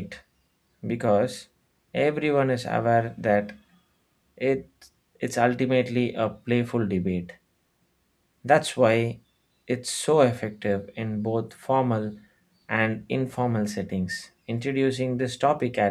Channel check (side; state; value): both; identical; correlation 1.00